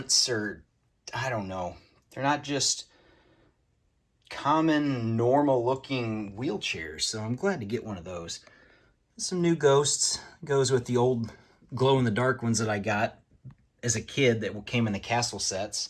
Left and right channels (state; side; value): identical; both; correlation 1.00